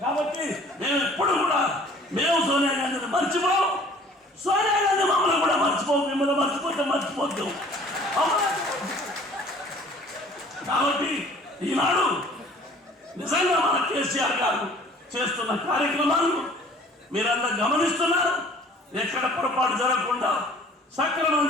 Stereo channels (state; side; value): normal; both; correlation 0.52